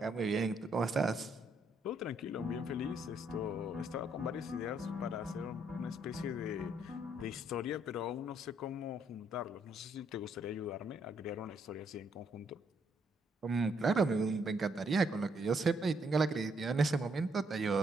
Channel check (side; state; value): both; normal; correlation 0.72